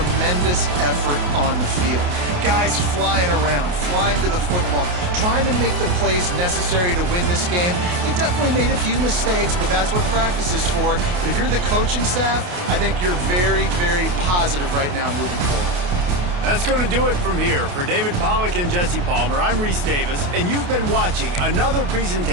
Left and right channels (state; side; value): late; left; 28 ms